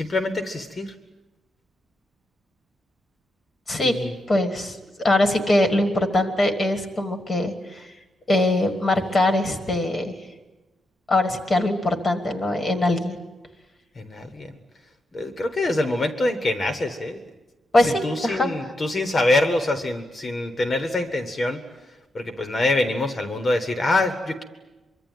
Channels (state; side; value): normal; both; correlation 0.84